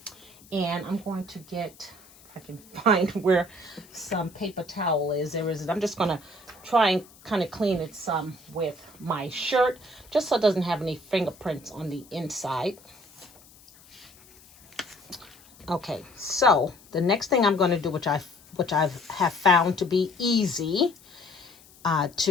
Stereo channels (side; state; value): left; noise; hiss, 25 dB below the sound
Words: And I'm going to get, if I can find where some paper towel is. There is. I'm just going to try and kind of clean it some with my shirt, just so it doesn't have any fingerprints on the inside. Okay, so the next thing I'm going to do, which I have found to be easy